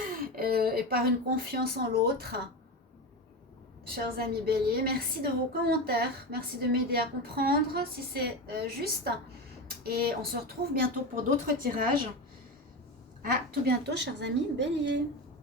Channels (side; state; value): both; normal; correlation 0.21